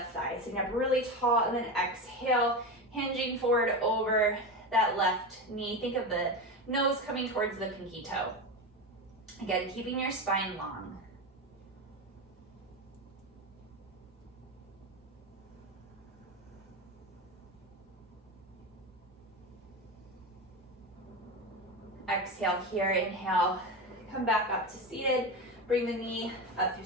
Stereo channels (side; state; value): both; normal; correlation 0.20